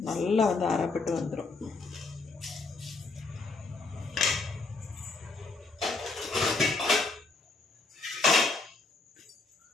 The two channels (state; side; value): quieter; right; 3.8 dB